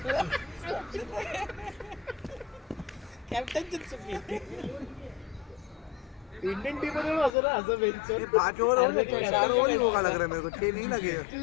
कॅप्टनची चुकी. इंडियन टीम मध्ये असं ना असं ये बेंचवर. 5 ओवर हो गए. 4 ओवर ही होगा लग रहा है मेरे को. 6 नहीं लगे.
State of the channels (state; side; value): drops out; right; at 7.3 s